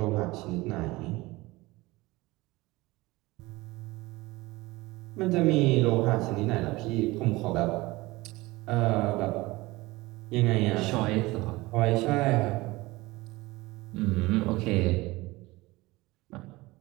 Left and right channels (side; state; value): left; quieter; 21.0 dB